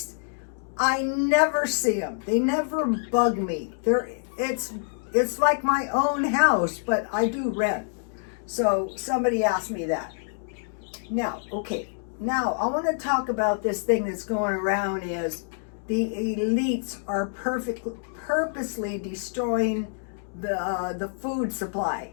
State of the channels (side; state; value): right; silent; digital silence